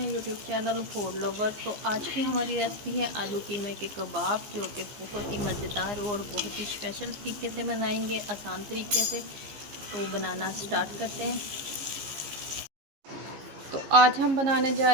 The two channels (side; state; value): left; late; 15 ms